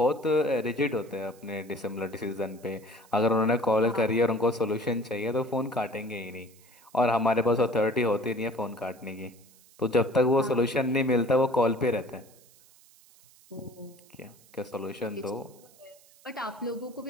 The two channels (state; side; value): noise; right; hiss, 27 dB below the sound